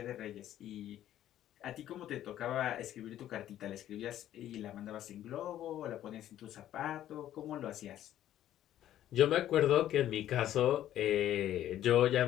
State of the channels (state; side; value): quieter; right; 12.2 dB